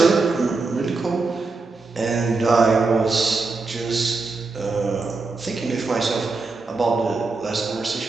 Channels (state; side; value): quieter; left; 3.9 dB